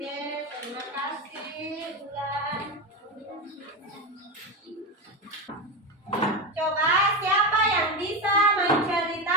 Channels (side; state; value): both; normal; correlation 0.16